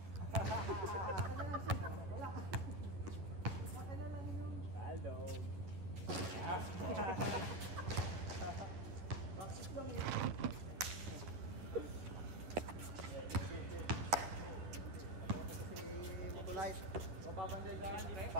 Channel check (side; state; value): left; late; 11 ms